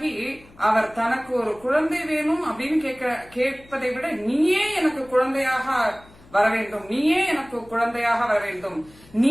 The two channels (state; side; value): noise; left; hum, 25 dB below the sound